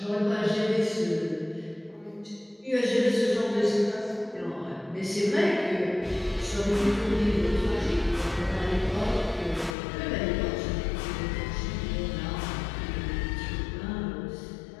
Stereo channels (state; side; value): drops out; right; at 9.8 s